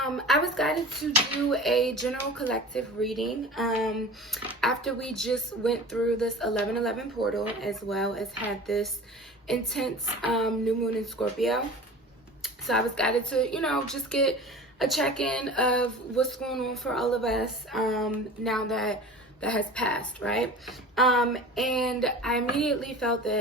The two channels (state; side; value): normal; both; correlation 0.37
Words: was guided to do a general collective reading after we just went through this 11/11 portal, as well as had this intense new moon in Scorpio. So I was guided to, just get a check-in of what's going on for all of us now that has passed, right? And I immediately felt